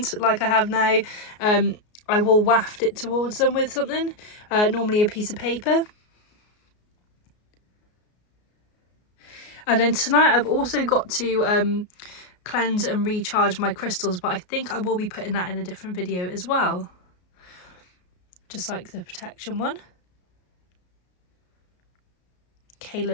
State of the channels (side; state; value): right; late; 33 ms